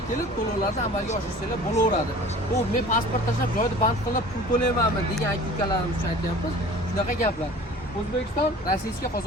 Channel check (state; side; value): normal; both; correlation 0.44